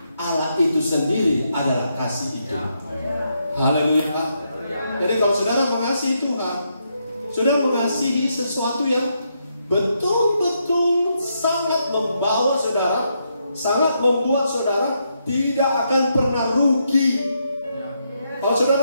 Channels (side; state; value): both; inverted; correlation -0.79